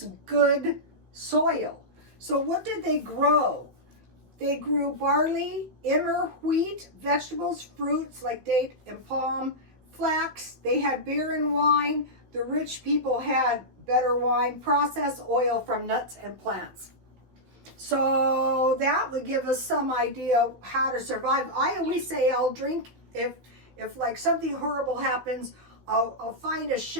good soil. So what did they grow? They grew barley, emmer, wheat, vegetables, fruits like date and palm, flax. They had beer and wine. The rich people had better wine, processed oil from nuts and plants. So that would give us some idea how to survive. I always say I'll drink if like something horrible happens. I'll find a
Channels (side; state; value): left; late; 16 ms